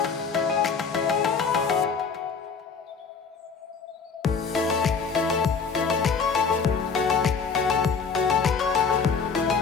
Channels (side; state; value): right; quieter; 5.4 dB